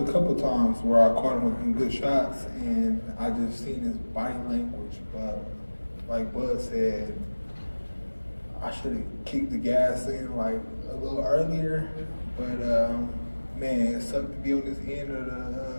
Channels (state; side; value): inverted; both; correlation -1.00